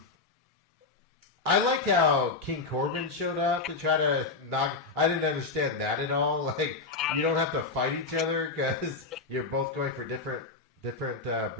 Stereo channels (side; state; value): right; quieter; 4.0 dB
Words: liked how King Corbin showed up to try to knock. I didn't understand that at all. Like, you don't have to fight each other because you're both going for different